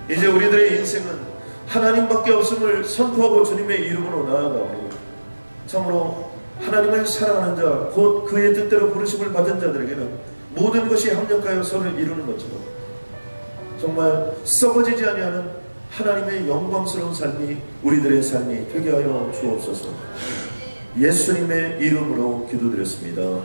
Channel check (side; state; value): both; inverted; correlation -1.00